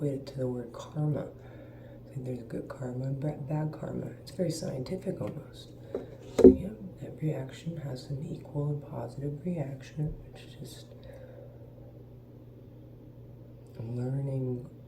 it to the word karma. Like there's good karma and bad karma. It's very scientific almost. So yeah, every action has an equal and positive reaction. It's just learning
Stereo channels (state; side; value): identical; both; correlation 1.00